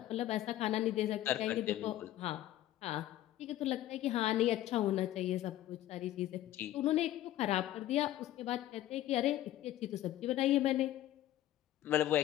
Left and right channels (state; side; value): quieter; right; 13.8 dB